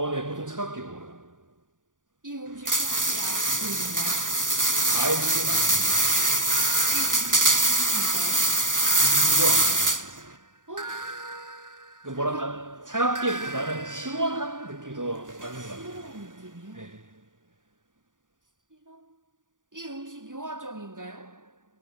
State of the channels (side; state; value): left; late; 0.88 ms